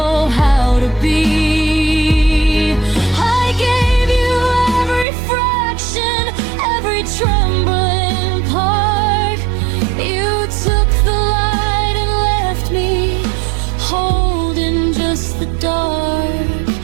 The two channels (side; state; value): left; drops out; at 5.1 s